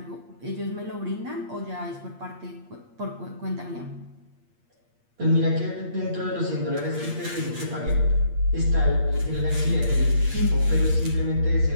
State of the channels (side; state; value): left; late; 8.5 ms